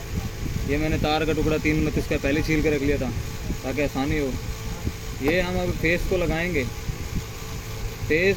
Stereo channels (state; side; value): identical; both; correlation 1.00